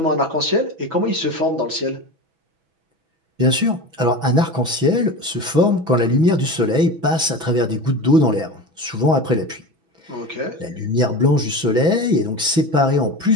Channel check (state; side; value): late; left; 6.1 ms